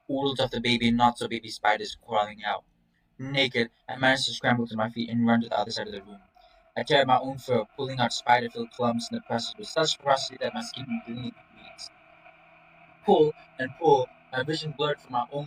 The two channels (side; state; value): both; identical; correlation 1.00